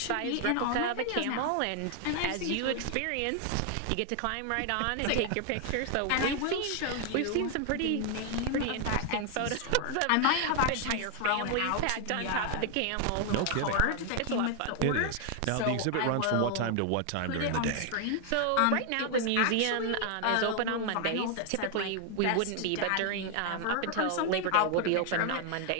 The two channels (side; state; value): both; different; correlation 0.00